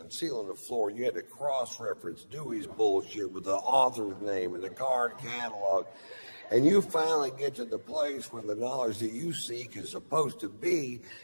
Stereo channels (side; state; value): both; inverted; correlation -1.00